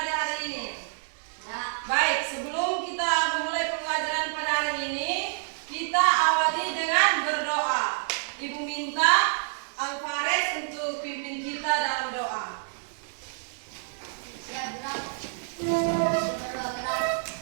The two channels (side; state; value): left; silent; 59 dB below the other